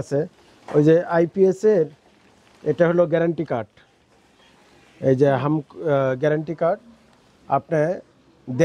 আছে। ওই যে আইপিএস এর এটা হলো গ্যারান্টি কার্ড। এই যে গ্যারান্টি কার্ড, আপনি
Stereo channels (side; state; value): both; identical; correlation 1.00